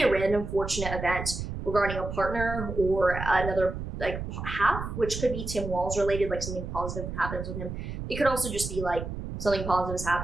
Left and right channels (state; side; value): noise; right; rumble, 6 dB below the sound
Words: a random fortunate event regarding a partner or another like half, which could be Tim Walz related, like something positive happens with him. It could also just be like something positive is